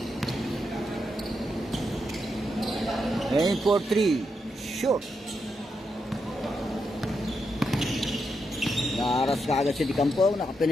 Aim for 3. Short. Naaras ka agad si Di Campo.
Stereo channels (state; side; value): normal; both; correlation 0.83